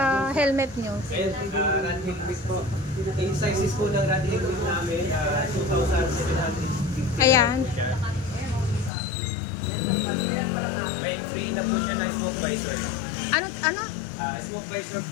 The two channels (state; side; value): drops out; right; at 8.9 s